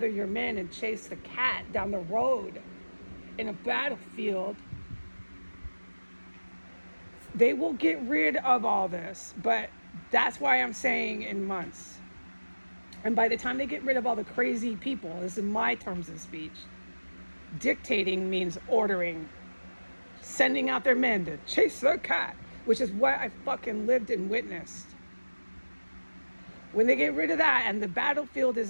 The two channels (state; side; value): inverted; both; correlation -1.00